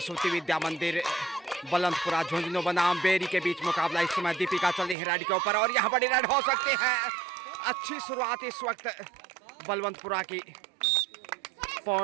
विद्या मंदिर बुलंदपुरा झुंझुनू बनाम बेरी के बीच मुकाबला। इस समय दीपिका चल रही है रेड के ऊपर और यहाँ बड़ी रेड हो सकती है। अच्छी शुरुआत इस वक्त बलवंतपुरा की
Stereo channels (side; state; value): left; drops out; at 5.0 s